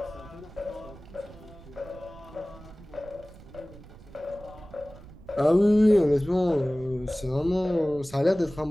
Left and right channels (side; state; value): right; noise; rumble, 19 dB below the sound